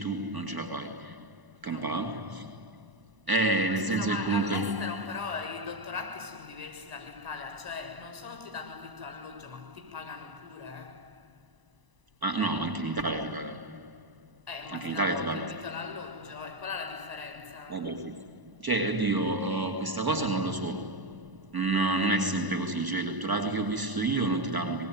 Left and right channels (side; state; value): left; late; 1.0 ms